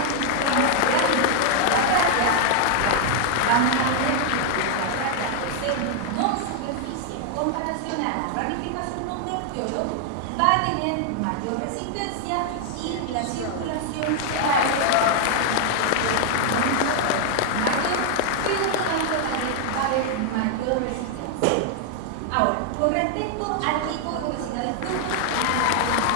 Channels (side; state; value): both; different; correlation 0.00